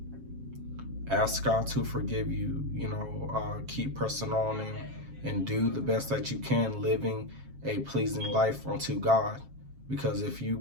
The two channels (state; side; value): late; left; 7.4 ms